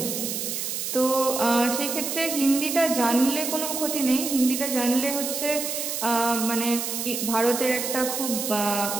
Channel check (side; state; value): right; noise; hiss, 3 dB below the sound